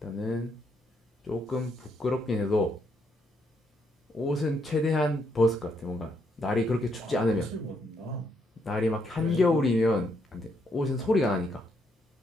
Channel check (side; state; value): both; normal; correlation 0.75